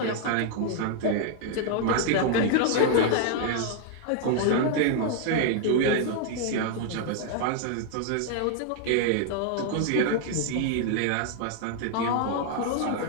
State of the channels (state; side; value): different; both; correlation 0.00